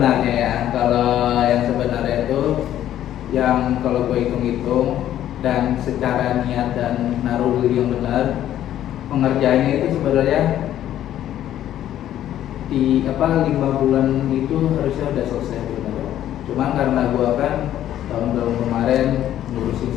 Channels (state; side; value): quieter; right; 11.9 dB